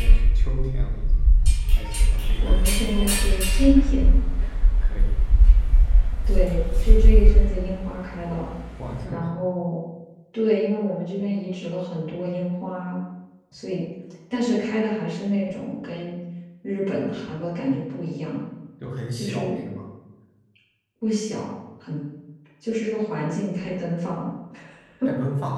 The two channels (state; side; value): identical; both; correlation 1.00